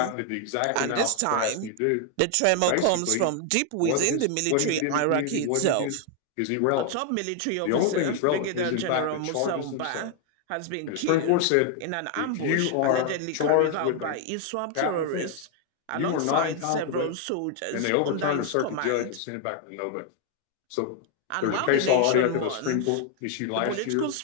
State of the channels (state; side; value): different; both; correlation 0.00